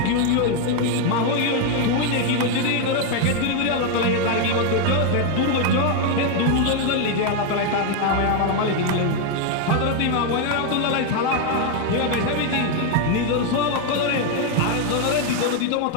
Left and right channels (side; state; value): both; different; correlation 0.01